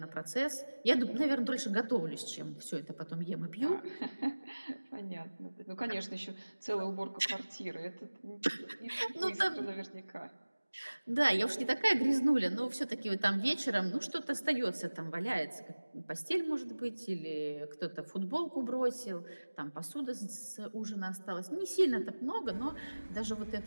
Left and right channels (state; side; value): inverted; both; correlation -1.00